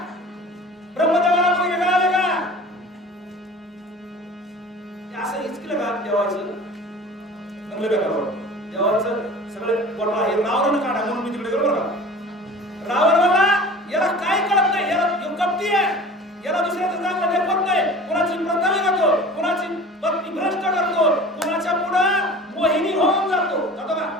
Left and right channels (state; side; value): normal; both; correlation 0.41